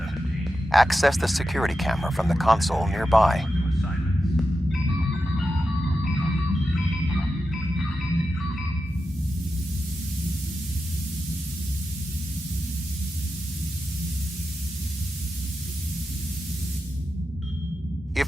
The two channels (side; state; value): both; normal; correlation 0.90